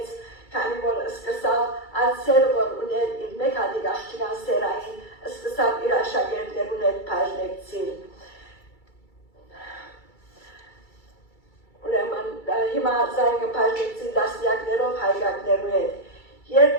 քանի որ սկսավ ացեր որ ուներ իր մեկ հատիկ աղջկան սերային սկսավ իր աշակերտներուն հետ բաժնեկցիլ ուրեմն հիմա զայգը բաժնեկցի դասյակներով հայրակներու հետ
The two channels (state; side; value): late; right; 2.3 ms